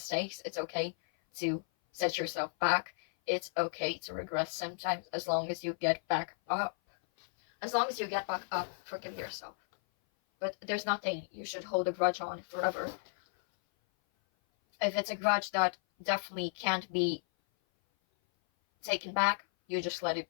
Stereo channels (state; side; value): silent; right; 55 dB below the other